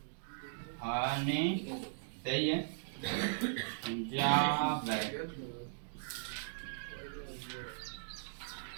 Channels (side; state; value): left; silent; digital silence